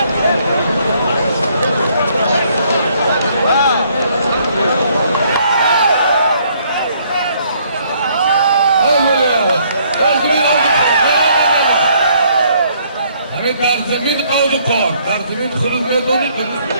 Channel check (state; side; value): inverted; both; correlation -0.66